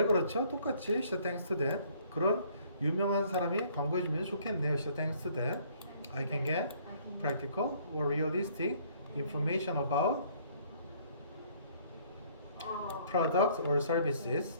그렇죠? 똑같이 시작. Thanks to that. 그런 유명한 사람이 광고해주면 좋겠네요. 시작. Thanks to that. I can get practical or realistic information about products or services,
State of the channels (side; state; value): both; inverted; correlation -0.60